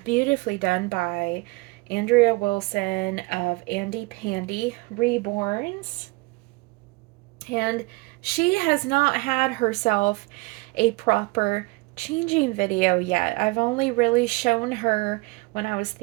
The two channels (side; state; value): left; quieter; 25.6 dB